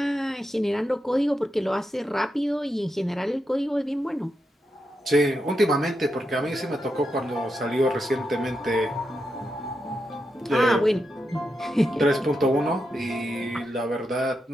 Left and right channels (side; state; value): both; normal; correlation 0.86